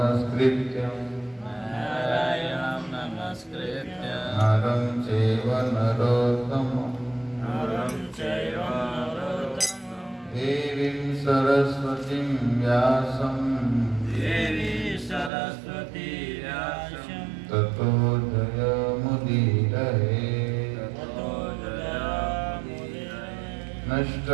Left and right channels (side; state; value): left; drops out; at 15.3 s